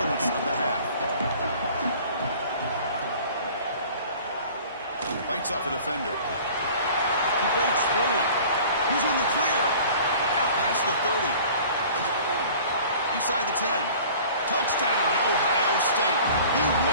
of the half. Bites off a defender. He breaks free. He's in the clear. Out past the 30. Inside the 10. Touchdown, Ohio State. He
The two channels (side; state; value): both; inverted; correlation -0.47